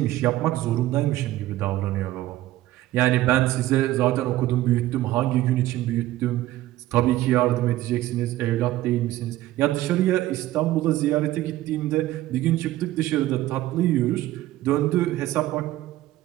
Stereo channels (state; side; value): quieter; left; 15.4 dB